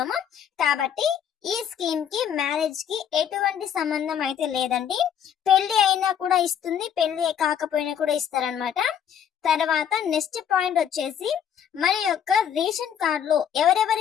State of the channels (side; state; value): right; quieter; 8.7 dB